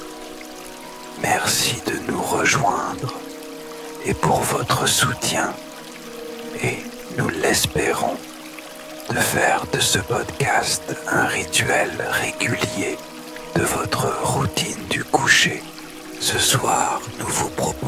Merci de nous rejoindre et pour votre soutien et, nous l'espérons, de faire de ce podcast un rituel régulier de votre routine du coucher. Ce soir, nous vous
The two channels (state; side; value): identical; both; correlation 1.00